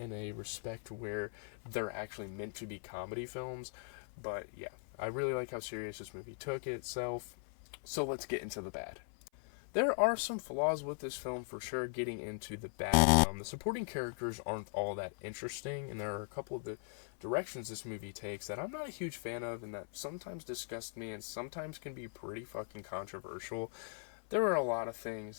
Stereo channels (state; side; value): silent; right; 51 dB below the other